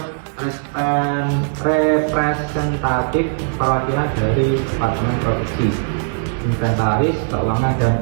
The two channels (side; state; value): left; silent; digital silence